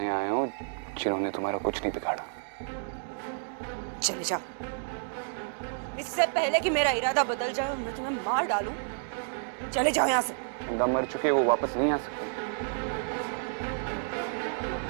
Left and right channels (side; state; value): left; silent; digital silence